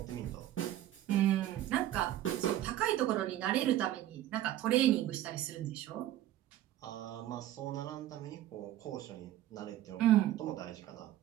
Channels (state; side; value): quieter; left; 13.1 dB